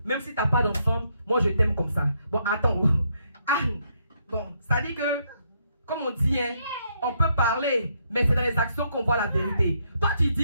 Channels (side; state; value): both; inverted; correlation -0.74